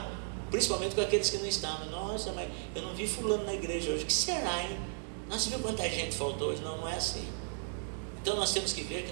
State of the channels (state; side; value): silent; left; digital silence